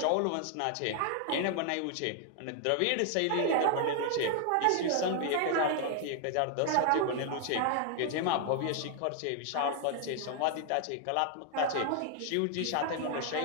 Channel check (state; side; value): different; both; correlation 0.00